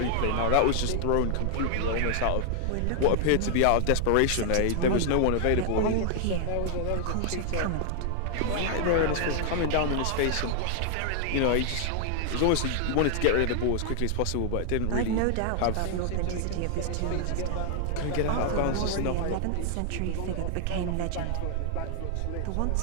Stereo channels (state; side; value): different; both; correlation 0.00